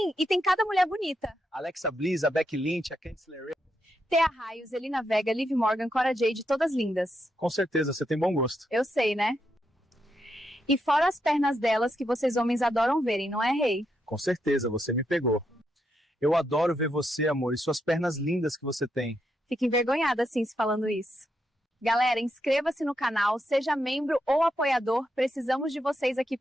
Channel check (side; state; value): both; normal; correlation 0.82